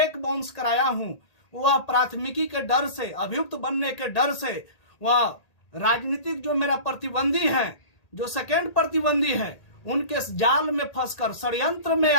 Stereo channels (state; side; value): late; right; 1.8 ms